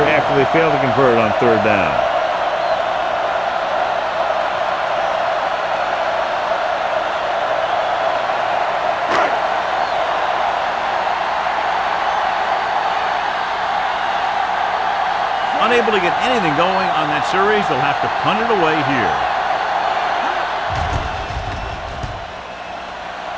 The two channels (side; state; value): both; identical; correlation 1.00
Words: they fail to convert on third down. Unable to get anything going on that series, they'll have to punt it away here.